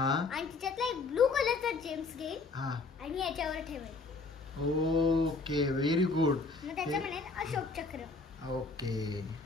आणि त्याच्यातला एक ब्लू कलरचा जेम्स घेईल हा. आणि याच्यावर ठेवेल. Okay, very good. मग त्याच्या म्हणेल अशोक चक्र. ओके,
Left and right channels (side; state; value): right; quieter; 3.9 dB